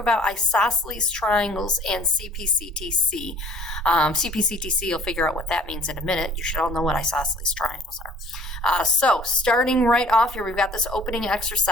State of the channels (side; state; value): both; normal; correlation 0.53